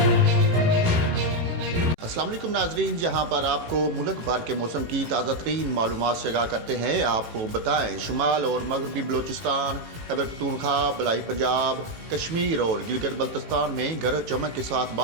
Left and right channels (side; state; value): left; late; 18 ms